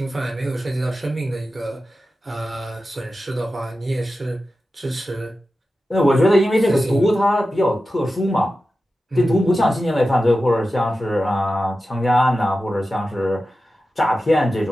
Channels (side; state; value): both; normal; correlation 0.93